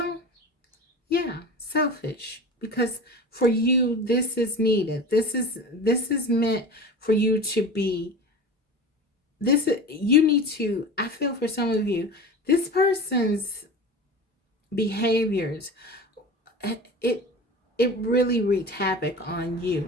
yeah, selfish. Because for you, this is needed. This is meant for you to be. You need to, I feel for some of you, this person's behaviors, it really wreaked havoc on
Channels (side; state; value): both; normal; correlation 0.33